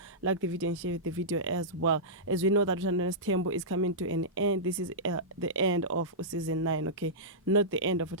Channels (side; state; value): both; normal; correlation -0.14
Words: Like the video and share the video as well. As we know that Uthandanes Tembo is coming to an end. This is the end of season 9. Okay, not the end of